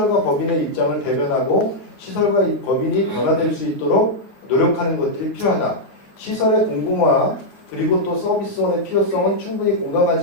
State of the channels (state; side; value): late; right; 9.4 ms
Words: 법인의 입장을 대변하고 시설과 법인이 변화될 수 있도록 노력하는 것들이 필요하다. 시설의 공공화 그리고 또 서비스원의 필요성은 충분히